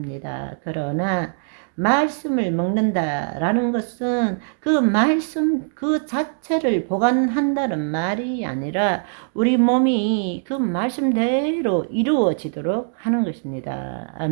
그러나 말씀을 먹는다라는 것은 그 말씀 그 자체를 보관한다는 말이 아니라 우리 몸이 그 말씀대로 이루어지도록 하는 것입니다.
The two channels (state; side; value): silent; left; digital silence